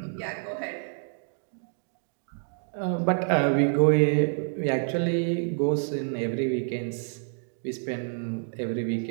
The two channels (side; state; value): left; silent; digital silence